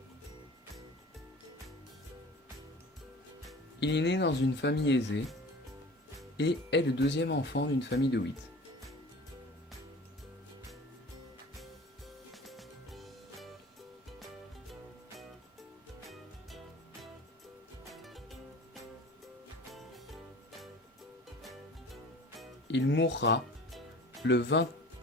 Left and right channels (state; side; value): normal; both; correlation 0.41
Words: Il est né dans une famille aisée et est le deuxième enfant d'une famille de 8. Il mourra le